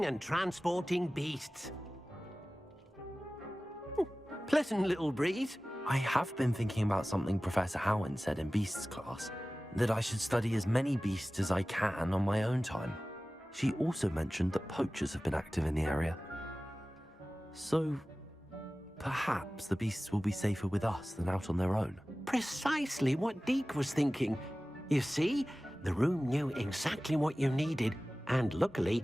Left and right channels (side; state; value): both; normal; correlation 0.97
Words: and transporting beasts. Pleasant little breeze. I have been thinking about something Professor Howard said in Beasts class, that I should study as many beasts as I can on my own time. She also mentioned that poachers have been active in the area. So, perhaps the beasts will be safer with us than out on their own. Precisely what Deke was thinking. You see, the room knew exactly what you needed, and luckily,